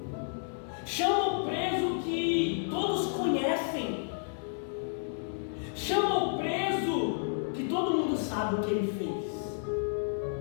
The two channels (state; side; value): silent; right; 57 dB below the other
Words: Chama o preso que todos conhecem. Chama o preso que todo mundo sabe o que ele fez.